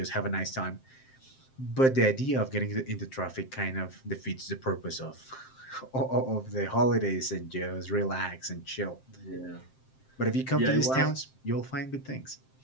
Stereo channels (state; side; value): late; right; 7.6 ms